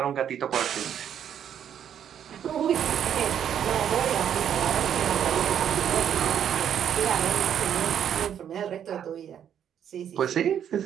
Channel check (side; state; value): left; quieter; 9.2 dB